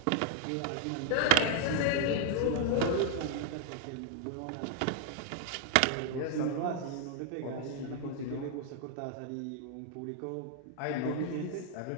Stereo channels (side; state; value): both; different; correlation 0.00